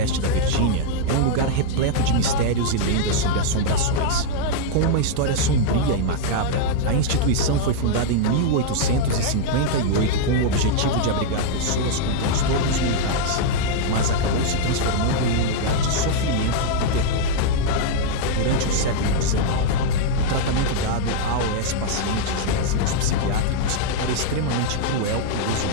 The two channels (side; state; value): both; different; correlation -0.01